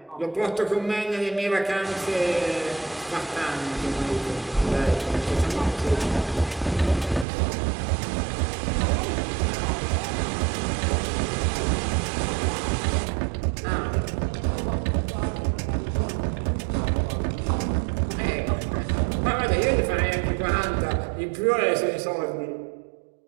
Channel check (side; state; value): left; drops out; at 7.2 s